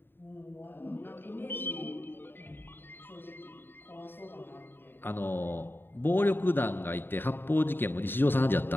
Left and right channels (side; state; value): right; late; 0.098 ms